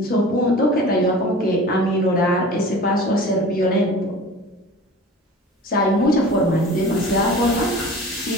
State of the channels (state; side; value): normal; both; correlation 0.40